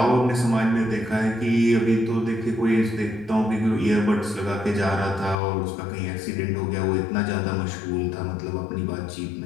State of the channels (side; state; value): right; drops out; at 5.4 s